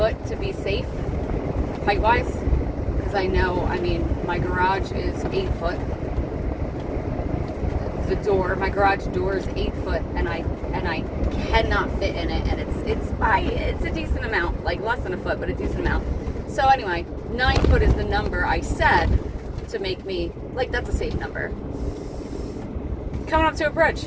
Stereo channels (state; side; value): identical; both; correlation 1.00